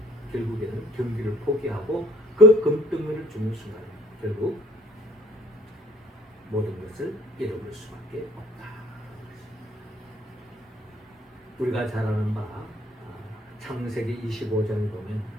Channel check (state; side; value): normal; both; correlation 0.56